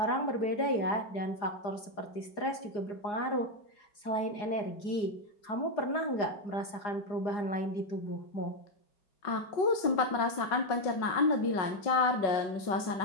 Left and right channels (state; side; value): late; right; 4.8 ms